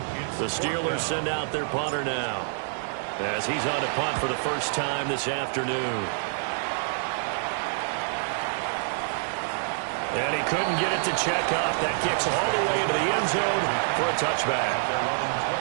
The Steelers send out their punter now, as he's on to punt for the first time this afternoon. And he couldn't get it to check up. That kicks all the way into the end zone for a touchback.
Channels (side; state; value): left; silent; 60 dB below the other